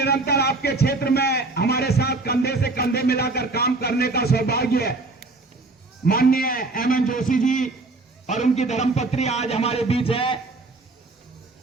आपके क्षेत्र में हमारे साथ कंधे से कंधे मिलाकर काम करने का सौभाग्य है। माननीय एमएन जोशी जी और उनकी धर्मपत्नी आज हमारे बीच है।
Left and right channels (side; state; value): left; quieter; 3.3 dB